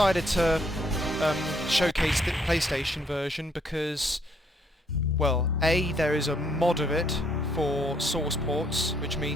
to showcase the PlayStation version because, well, A, there is a mod of it for source ports, which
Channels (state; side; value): normal; both; correlation 0.69